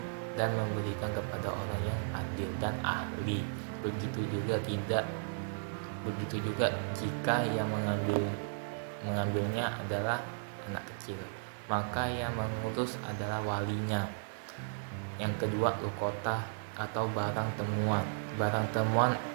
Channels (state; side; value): silent; left; digital silence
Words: dan memberikan kepada orang yang adil dan ahli. Begitu juga jika yang mengambilnya adalah anak kecil, maka yang mengurus adalah walinya. Yang kedua, lukota atau barang temuan. Barang temuan